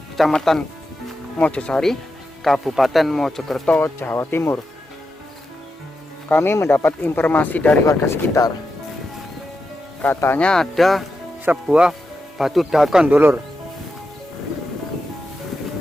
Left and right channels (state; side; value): normal; both; correlation 0.88